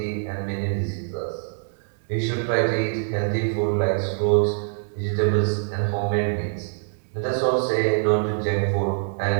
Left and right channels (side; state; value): left; silent; digital silence